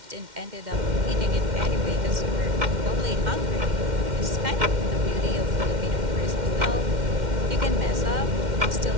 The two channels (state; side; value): late; left; 2.1 ms